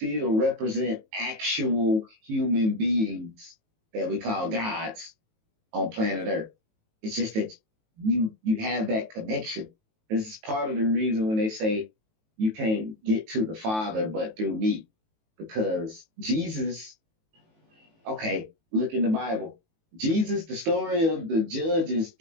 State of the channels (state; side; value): late; left; 19 ms